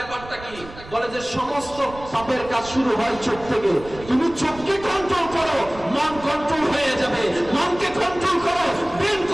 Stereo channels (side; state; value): right; noise; rumble, 16 dB below the sound